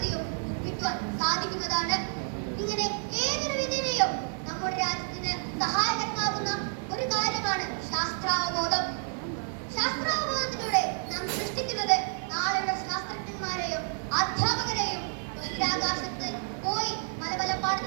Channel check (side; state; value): left; silent; 58 dB below the other